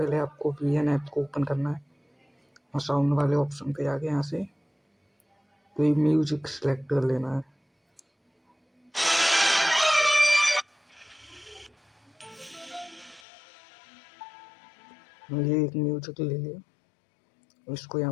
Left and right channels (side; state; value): right; drops out; at 13.2 s